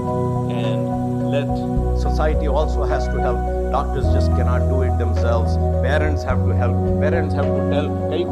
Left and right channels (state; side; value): identical; both; correlation 1.00